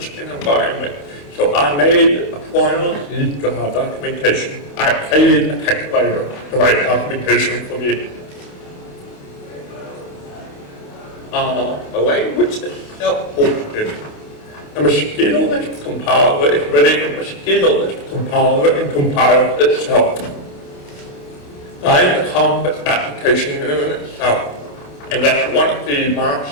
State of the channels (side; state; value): right; late; 28 ms